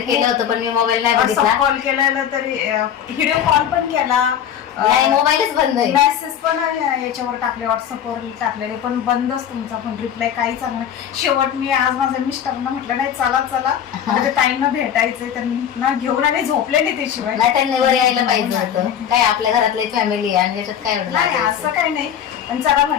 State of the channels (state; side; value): quieter; right; 9.2 dB